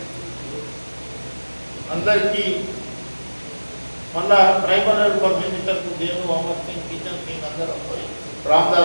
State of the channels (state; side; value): inverted; both; correlation -1.00